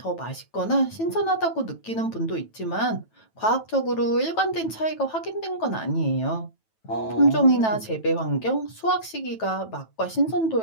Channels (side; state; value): right; late; 9.1 ms